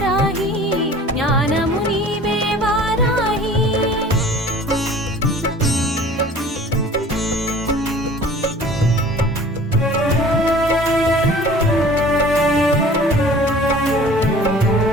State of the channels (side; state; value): both; normal; correlation 0.46